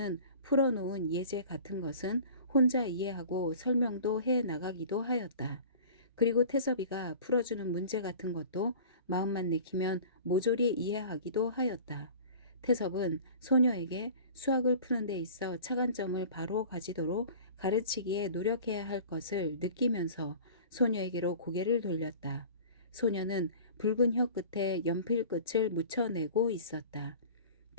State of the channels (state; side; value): inverted; both; correlation -0.42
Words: 풀어놓은 예제 같은 것은 혼자 이해하고 설명도 해 나가기도 하였다. 그리고 태섭이가 풀어주는 문제 같은 것도 마음만 내키면 모조리 이해하기도 하였다. 태섭은 소녀에게 수학을 푸는 데 있어 차관점을 바로 가지도록 가르치기에 노력해야 할 것을 느끼면서 소녀에게로 고개를 돌렸다. 소녀는 붉은 혀 끝에 연필 끝을 묻혀내고 있었다.